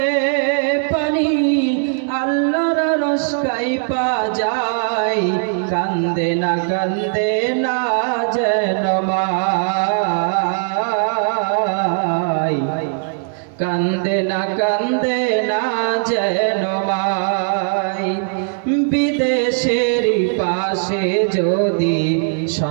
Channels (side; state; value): left; silent; 66 dB below the other